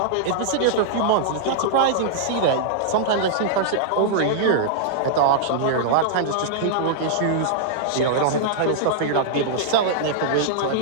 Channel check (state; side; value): different; both; correlation -0.02